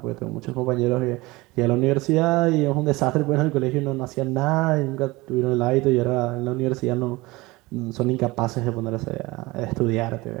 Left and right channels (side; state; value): left; quieter; 21.7 dB